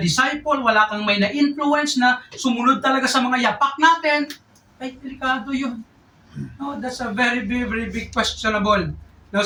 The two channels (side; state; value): both; identical; correlation 1.00